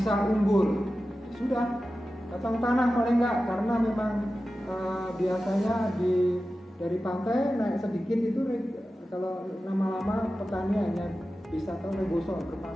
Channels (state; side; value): normal; both; correlation 0.94